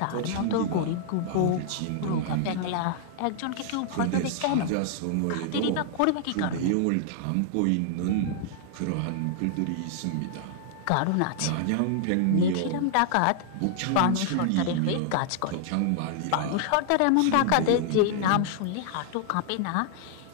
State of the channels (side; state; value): both; different; correlation -0.01